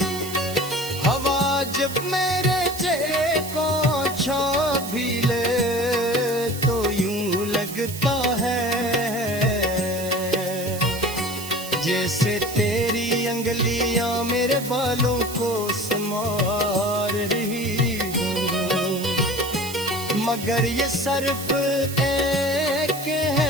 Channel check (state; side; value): noise; right; hiss, 11 dB below the sound